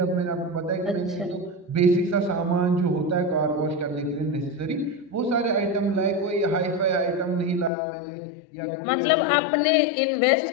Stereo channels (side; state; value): right; drops out; at 7.7 s